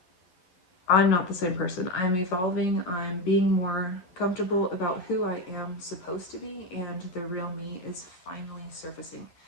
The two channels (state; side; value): late; right; 11 ms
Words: the same person. I'm evolving. I'm being more comfortable about who I am supposed to be, and the real me is finally surfacing.